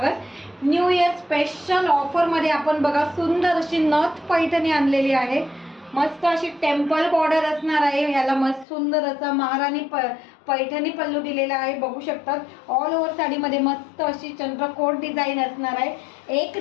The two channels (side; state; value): right; drops out; at 8.7 s